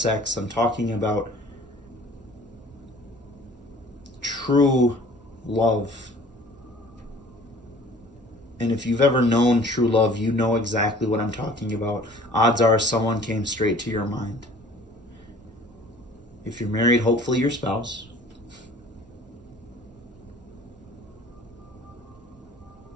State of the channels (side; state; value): both; normal; correlation 0.50